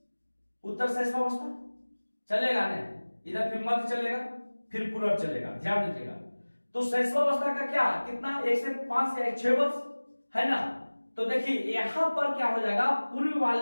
उत्तर शैशवावस्था चलेगा ना, इधर फिर मध्य चलेगा, फिर पूर्व चलेगा, ध्यान दीजिएगा। तो शैशवावस्था का क्या कितना, 1 से 5 या 6 वर्ष, है ना। तो देखिए यहां पर क्या हो जाएगा, पूर्व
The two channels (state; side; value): inverted; both; correlation -1.00